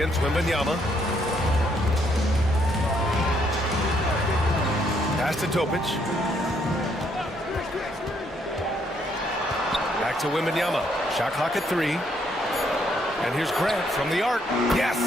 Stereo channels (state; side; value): normal; both; correlation 0.71